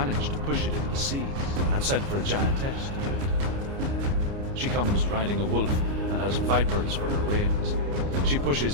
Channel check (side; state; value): left; late; 29 ms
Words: to push it into the sea and sent for a giantess to do it. She comes riding a wolf and has vipers for her reins. She